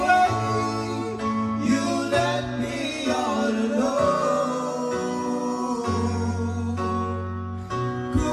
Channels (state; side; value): identical; both; correlation 1.00